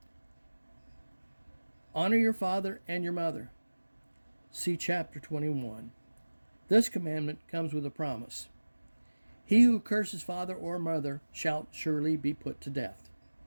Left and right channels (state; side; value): inverted; both; correlation -1.00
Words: Honor your father and your mother. See chapter 21. This commandment comes with a promise. He who curses father or mother shall surely be put to death.